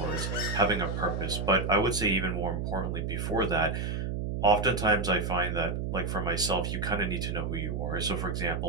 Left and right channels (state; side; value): noise; right; hum, 2 dB below the sound